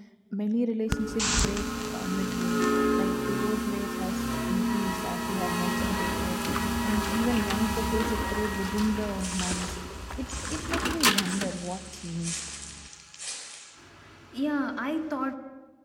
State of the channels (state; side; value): identical; both; correlation 1.00